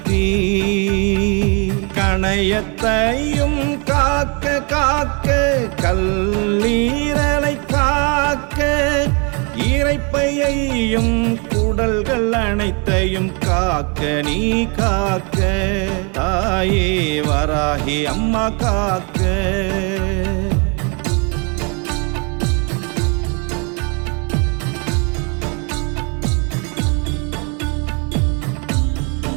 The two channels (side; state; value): left; quieter; 34.0 dB